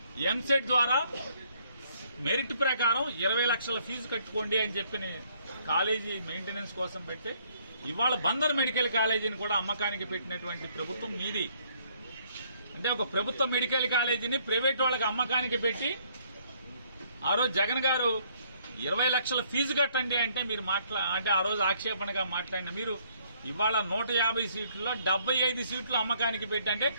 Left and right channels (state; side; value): inverted; both; correlation -0.66